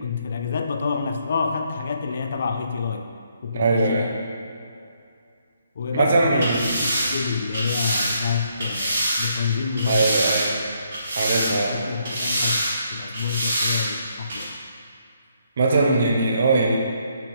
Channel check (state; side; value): inverted; both; correlation -0.73